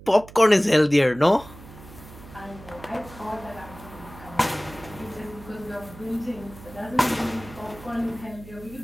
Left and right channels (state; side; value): noise; right; hum, 18 dB below the sound